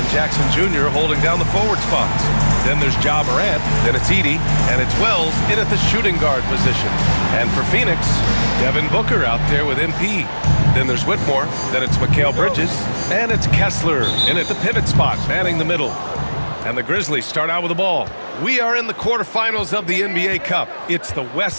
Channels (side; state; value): both; inverted; correlation -1.00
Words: Jackson Jr. holding down the forward spots. Then there's Ja Morant, then it's Edey, and it's Wells in at the shooting guard position. And for Phoenix, Devin Booker out there with MP. Then there's Whitmore, then it's Mikal Bridges, and it's Kessler in at the pivot spot, manning the middle. And the Grizzlies start out with the ball. We are in the quarterfinals of the NBA Cup. It's the